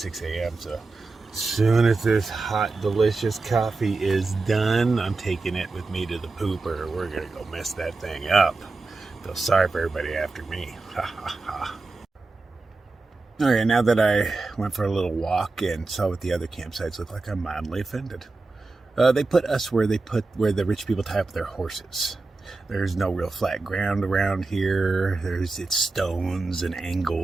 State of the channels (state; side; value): quieter; left; 3.6 dB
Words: a.m. So as soon as this hot, delicious coffee is done, I'm taking it with me to the pooper. We're going to go mess that thing up. Feel sorry for everybody after me. Ha ha ha. Okay, now that I went for a little walk and saw what the other campsites look like, I'm mildly offended. They put us where where the rich people tie up their horses. There's no real flat ground around here. It's stones and